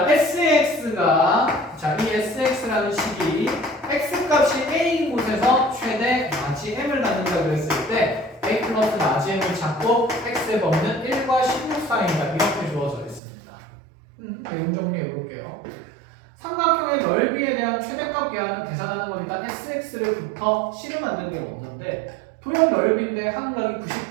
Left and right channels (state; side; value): drops out; left; at 13.2 s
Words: SX가 자 이 SX라는 식이 x값이 a인 곳에서 최대 마지 m을 갖는다 그랬을 때 a 플러스 마지 m을 잡고 x의 범위는 1과 16 사이다. 이렇게 주어져 있습니다. 내용 정리해 볼게요. 삼각형의 넓이에 대한 최대값 계산은 계산하는 거니까 SX를부터 C를 만드는 게 먼저인데 도형 넓이인데 한각이